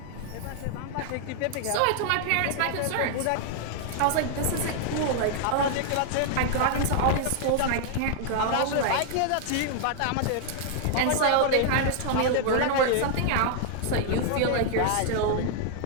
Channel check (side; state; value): both; different; correlation 0.00